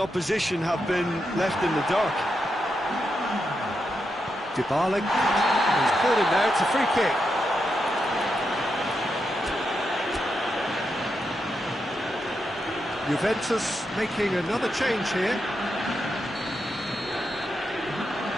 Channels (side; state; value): both; normal; correlation 0.85